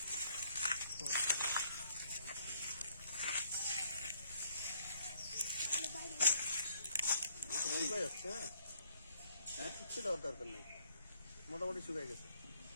শুকাই যাচ্ছে। হ্যাঁ কিচ্ছু দেওয়ার দরকার নেই, মোটামুটি শুকাই গেছে।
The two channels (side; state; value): both; inverted; correlation -0.66